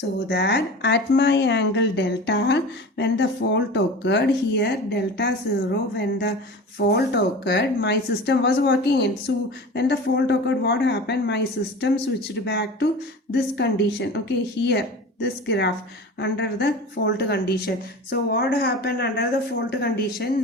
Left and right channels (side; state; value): both; normal; correlation 0.34